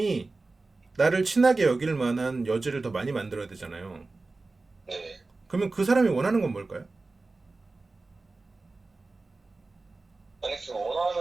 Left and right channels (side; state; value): left; quieter; 3.5 dB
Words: 나를 친하게 여길 만한 여지를 더 많이 만들어야 되잖아요. 네. 그러면 그 사람이 원하는 건 뭘까요? 아니 그